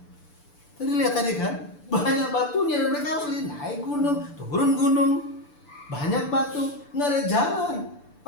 Tadi lihat tadi kan, banyak batunya dan mereka harus naik gunung, turun gunung, banyak batu, nggak ada jalan.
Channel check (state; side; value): late; right; 6.8 ms